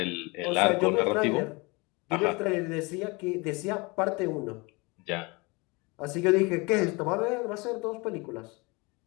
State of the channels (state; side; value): quieter; right; 26.8 dB